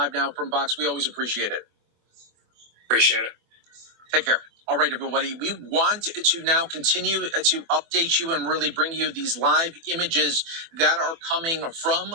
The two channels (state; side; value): late; left; 24 ms